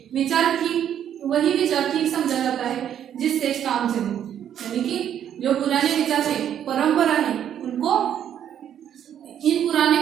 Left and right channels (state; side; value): quieter; left; 9.8 dB